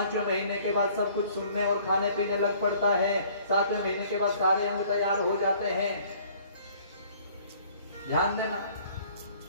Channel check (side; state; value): both; inverted; correlation -0.56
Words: महीने के बाद सब कुछ सुनने और खाने पीने लग पड़ता है, 7वें महीने के बाद सारे अंग तैयार हो जाते हैं। ध्यान देना,